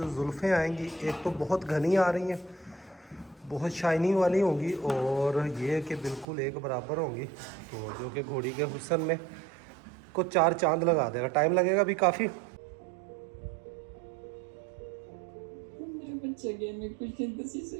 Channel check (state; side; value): drops out; left; at 6.2 s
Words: जुल्फ़ें आएंगी एक तो बहुत घनी आ रही हैं बहुत शाइनिंग वाली होंगी और ये कि बिल्कुल एक बराबर होंगी, तो जो कि घोड़ी के हुस्न में को 4 चांद लगा देगा। टाइम लगेगा अभी काफ़ी। मेरा बच्चा गया, मैं कुछ नहीं 10